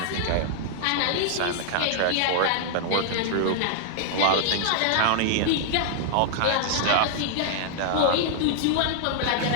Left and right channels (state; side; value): different; both; correlation -0.01